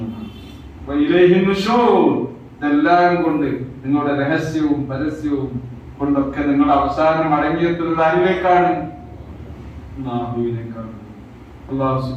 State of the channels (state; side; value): identical; both; correlation 1.00